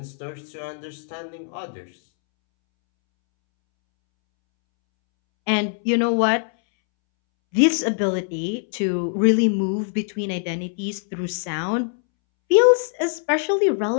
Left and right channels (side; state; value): right; silent; 64 dB below the other